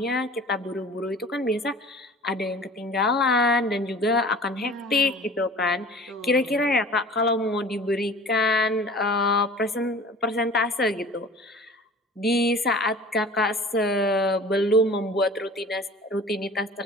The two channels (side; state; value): both; normal; correlation 0.43